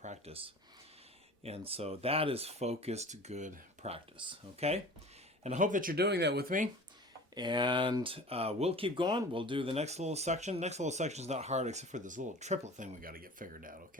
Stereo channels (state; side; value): normal; both; correlation 0.41